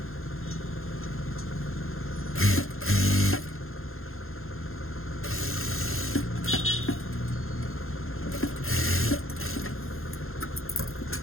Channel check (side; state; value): right; late; 0.61 ms